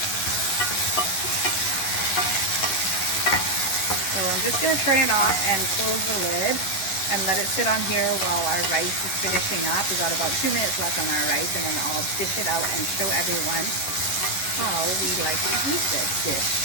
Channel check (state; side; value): late; right; 11 ms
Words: So I'm just going to turn it off and close the lid and let it sit on here while our rice is finishing up. We've got about 2 minutes left on our rice, and then I'll dish it out and show everyone how we like to eat this dish.